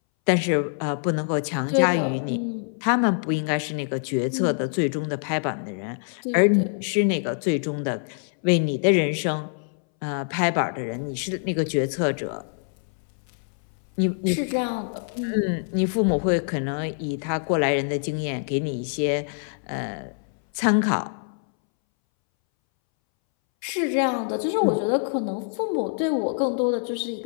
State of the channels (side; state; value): right; silent; 62 dB below the other